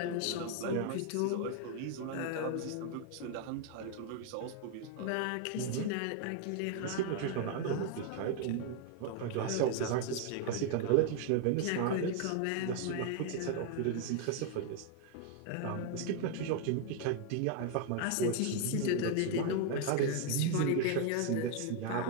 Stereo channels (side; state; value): both; different; correlation 0.00